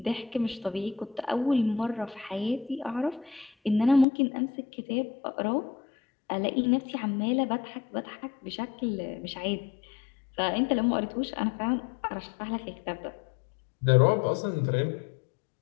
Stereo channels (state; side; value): drops out; right; at 4.0 s